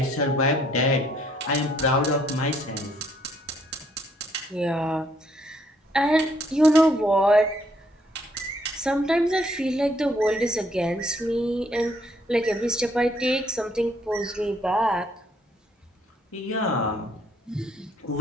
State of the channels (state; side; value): normal; both; correlation 0.68